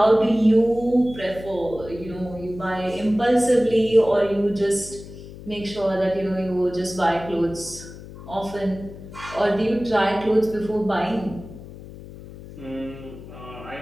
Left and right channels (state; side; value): noise; left; hum, 15 dB below the sound